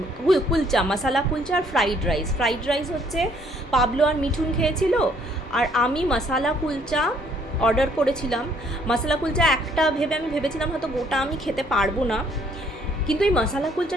কুলচা, মশালা কুলচা, আর ফ্রাইড রাইস হচ্ছে পাবলো আর মিঠুন খেয়েছিল, আর আমি মশালা কুলচা অর্ডার করেছিলাম। মশালা কুলচা একটা আমি ভেবেছিলাম হয়তো গোটা আমি খেতে পারবো না, কিন্তু এই মশালা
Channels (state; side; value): normal; both; correlation 0.64